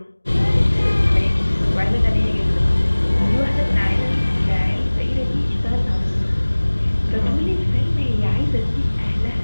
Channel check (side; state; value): both; inverted; correlation -1.00